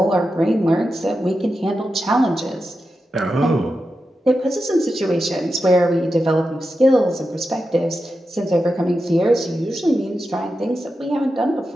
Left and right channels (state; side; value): normal; both; correlation 0.90